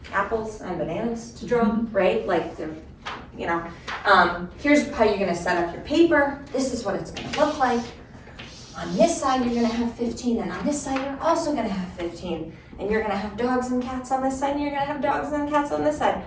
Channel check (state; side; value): identical; both; correlation 1.00